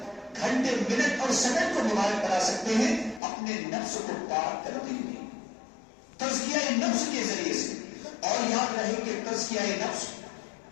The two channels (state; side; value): drops out; right; at 3.2 s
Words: گھنٹے، منٹ اور سیکنڈ کو مبارک بنا سکتے ہیں، اپنے نفس کو پاک کرتے ہوئے تزکیہ نفس کے ذریعے سے۔ اور یاد رہے کہ تزکیہ نفس،